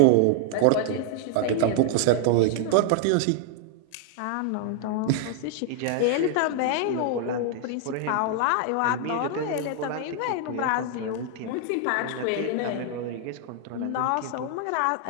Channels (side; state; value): both; different; correlation 0.00